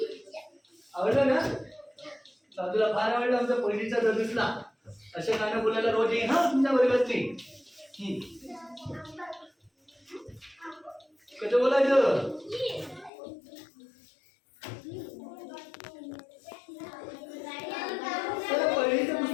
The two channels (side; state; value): right; drops out; at 13.1 s